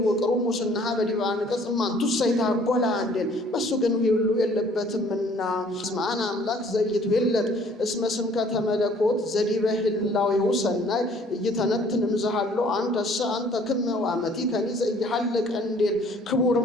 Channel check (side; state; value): both; normal; correlation 0.57